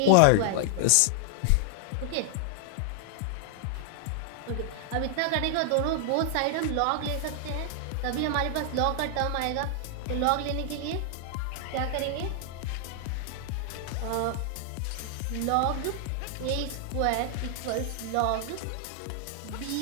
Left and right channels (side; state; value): both; different; correlation 0.00